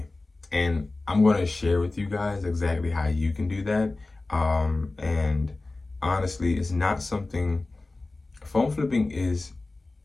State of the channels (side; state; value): right; quieter; 3.2 dB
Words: And I'm going to share with you guys exactly how you can do that. And honestly, it's not something, phone flipping is